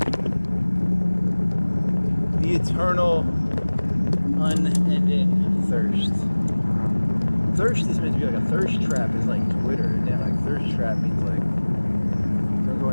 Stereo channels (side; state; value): both; inverted; correlation -1.00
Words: Eternal, unending thirst. Thirst is meant to be like a thirst trap. Is like Twitter, and then like thirst trap means like don't go